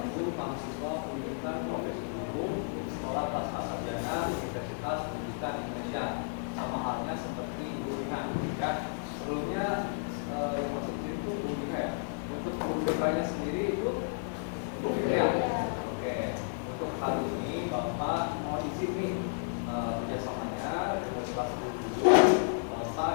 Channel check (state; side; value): silent; right; 56 dB below the other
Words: mahasiswa pendidikan profesi hukum Sekolah Pasca Sarjana Universitas Pendidikan Indonesia. Sama halnya seperti Ibu Rina ya. Sebelumnya yang masuk itu Bu Rina ya. Untuk Bu Rina sendiri itu Bu Rina ya. Oke. Untuk kali ini Bapak mau izin nih kerjasamanya dengan kelas 10